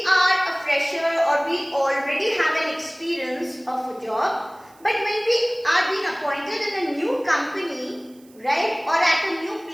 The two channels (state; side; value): noise; right; hiss, 29 dB below the sound